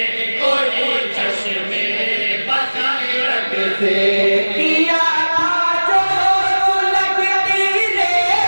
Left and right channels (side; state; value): both; inverted; correlation -1.00